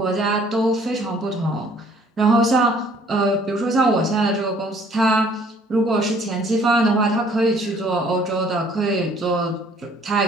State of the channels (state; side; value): normal; both; correlation 0.58